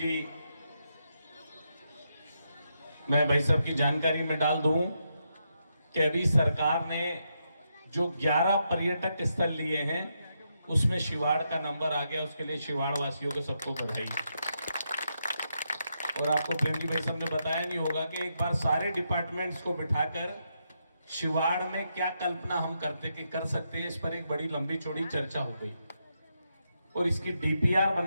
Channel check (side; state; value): both; inverted; correlation -0.82